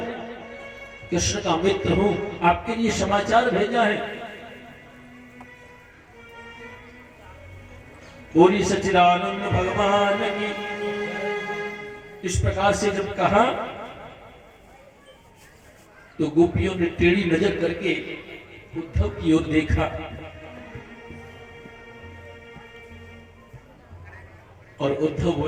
कृष्ण का मित्र हूं, आपके लिए समाचार भेजा है। बोली सच्चिदानंद भगवान की। इस प्रकार से जब कहा तो गोपियों ने टेढ़ी नजर करके उद्धव की ओर देखा और उद्धव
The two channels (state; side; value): identical; both; correlation 1.00